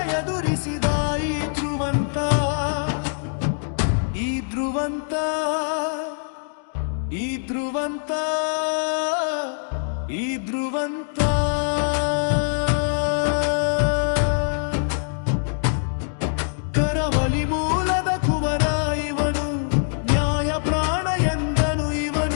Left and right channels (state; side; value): silent; right; digital silence